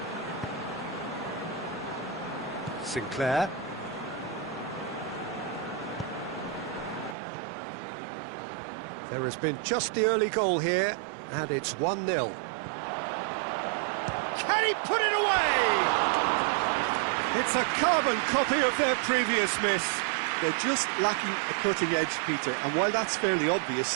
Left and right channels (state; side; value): drops out; left; at 7.2 s